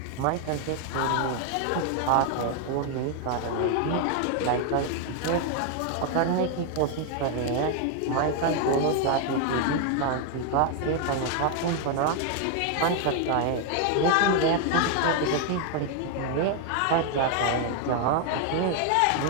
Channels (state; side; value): different; both; correlation 0.00